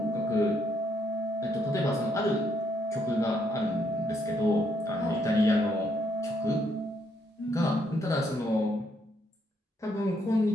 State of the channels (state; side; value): normal; both; correlation 0.73